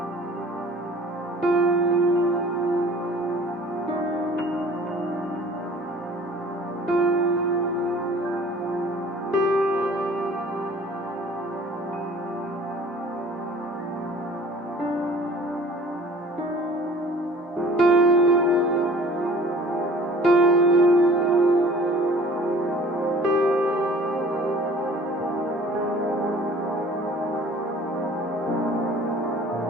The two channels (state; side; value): normal; both; correlation 0.49